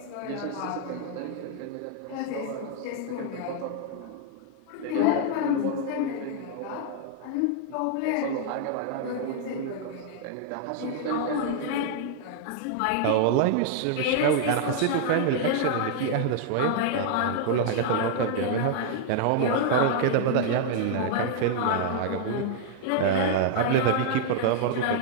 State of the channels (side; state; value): both; different; correlation -0.01